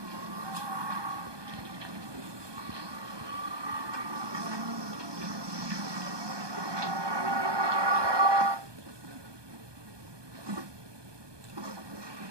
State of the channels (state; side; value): late; left; 1.2 ms